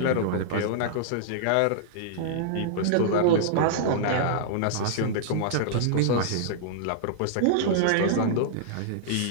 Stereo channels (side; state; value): both; different; correlation -0.02